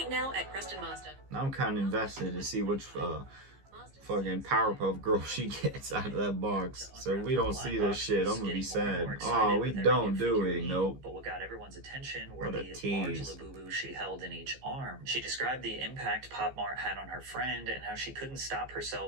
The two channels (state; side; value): late; left; 15 ms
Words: now at Preston Mazda. Now I'm kind of invested to see which fucking Powerpuff Girl she gets out of that box. So if we don't see this shit, I'm gonna be sad. Oh, we don't do it. Nope. But what got everyone's attention were What a the tease. large Labubu she held in each arm. She described the impact Pop Mart had on her friend and how she couldn't stop